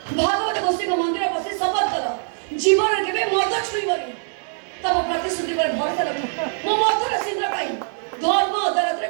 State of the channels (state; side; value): silent; left; digital silence